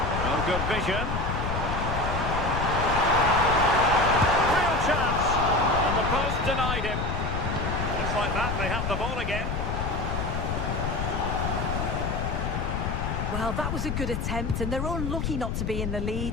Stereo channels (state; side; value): noise; left; rumble, 2 dB below the sound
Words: Oh, good vision. Real chance. And the post denied him. Just like that, they have the ball again. Well, that was a good attempt, and they're unlucky not to be in the lead.